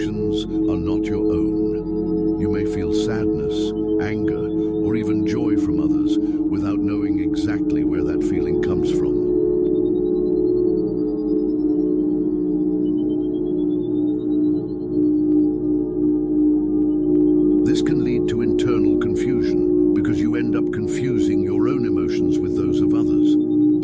are not your own. You may feel sadness, anger, or even joy from others without exactly where that feeling comes from. This can lead to internal confusion because you end up confusing your own emotions with those of others.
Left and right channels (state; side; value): identical; both; correlation 1.00